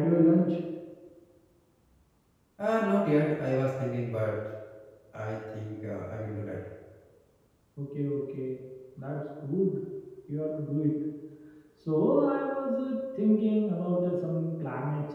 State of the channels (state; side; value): identical; both; correlation 1.00